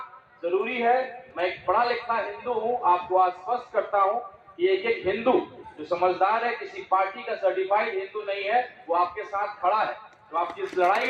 जरूरी है। मैं एक पढ़ा लिखा हिंदू हूँ, आपको आश्वस्त करता हूँ कि एक एक हिंदू जो समझदार है, किसी पार्टी का सर्टिफाइड हिंदू नहीं है, वो आपके साथ खड़ा है। तो आपकी इस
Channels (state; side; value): identical; both; correlation 1.00